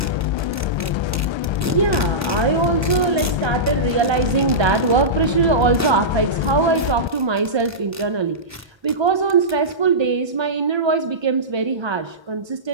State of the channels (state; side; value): normal; both; correlation -0.16